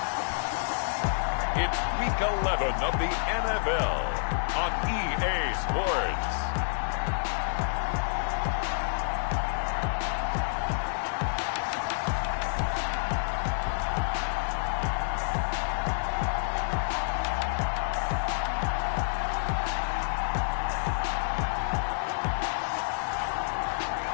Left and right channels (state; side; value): silent; right; 59 dB below the other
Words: it's Week 11 of the NFL on EA Sports.